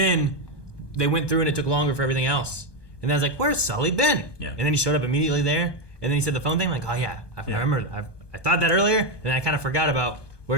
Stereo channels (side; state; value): right; late; 1.2 ms